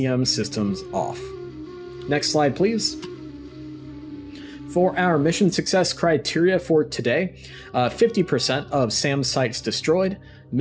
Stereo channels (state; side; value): identical; both; correlation 1.00